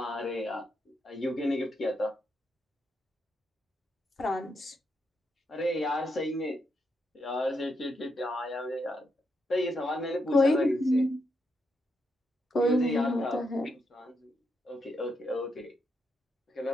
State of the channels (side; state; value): both; normal; correlation 0.81